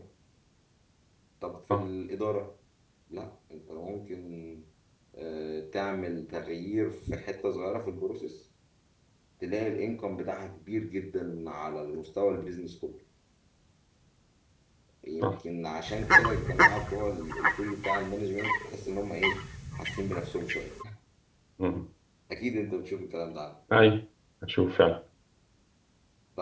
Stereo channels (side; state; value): both; identical; correlation 1.00